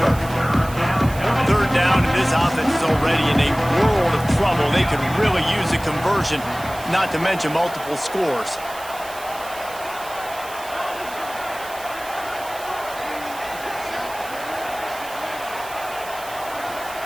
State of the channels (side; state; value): right; noise; hiss, 16 dB below the sound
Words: already in a world of trouble. They could really use a conversion, not to mention multiple scores.